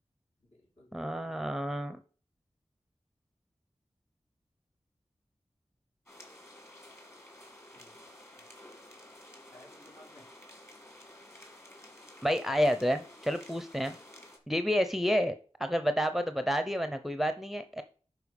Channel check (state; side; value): normal; both; correlation 0.90